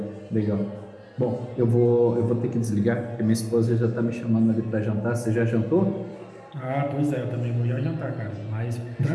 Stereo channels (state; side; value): identical; both; correlation 1.00